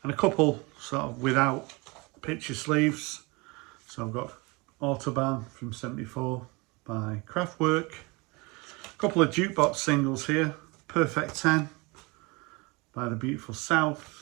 And a couple sort of without picture sleeves. So I've got Autobahn from 74 by Kraftwerk. A couple of jukebox singles here. Perfect 10 by The Beautiful South.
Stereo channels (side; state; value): left; quieter; 26.3 dB